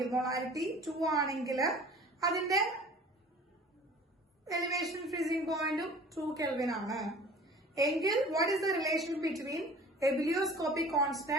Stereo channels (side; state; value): both; normal; correlation 0.45